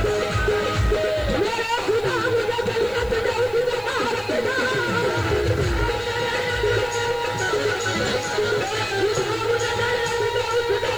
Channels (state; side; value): noise; left; hiss, 24 dB below the sound